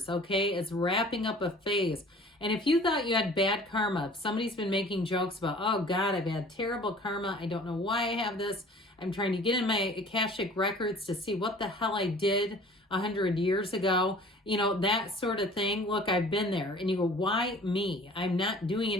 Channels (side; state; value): both; normal; correlation 0.48